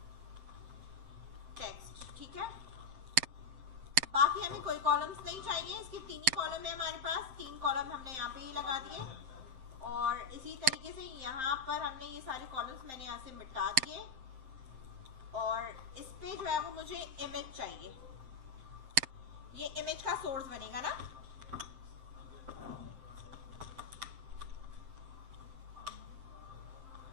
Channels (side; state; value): left; late; 7.7 ms